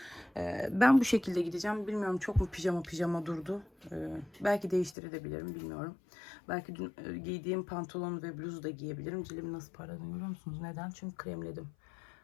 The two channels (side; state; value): right; drops out; at 5.0 s